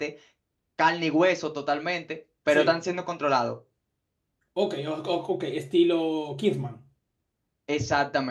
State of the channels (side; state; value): both; identical; correlation 1.00